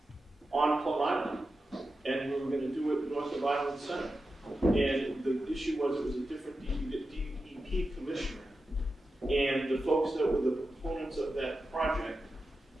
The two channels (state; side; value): normal; both; correlation 0.91